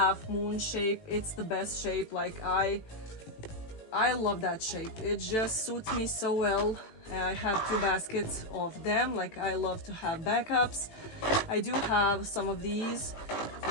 moon shape. It's the best shape. Like I love that shape. It just suits me so well. I have 2 baskets of them. Like I love to have backups. I do have some of these.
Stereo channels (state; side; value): late; right; 18 ms